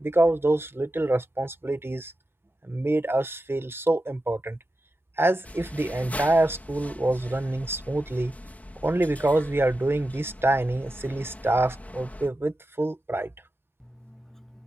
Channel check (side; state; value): both; normal; correlation 0.91